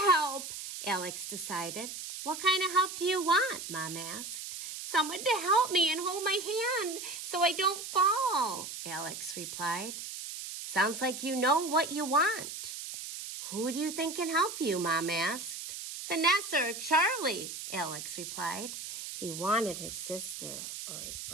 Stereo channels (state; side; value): noise; right; hiss, 8 dB below the sound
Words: help, Alex decided. What kind of help do you want? Mom asked. Someone to help me and hold my hand so I don't fall, Alex replied. Sounds like you know what you want. Who do you think can help you? Mom asked. Vanessa or Charlie, Alex replied. He wanted his sister or his